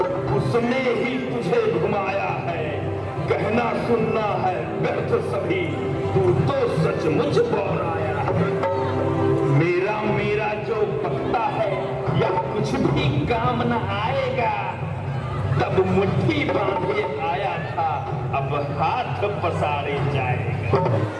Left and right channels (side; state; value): both; identical; correlation 1.00